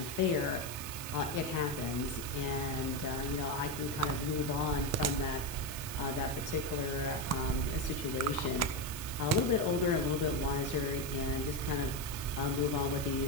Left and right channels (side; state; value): right; noise; hiss, 9 dB below the sound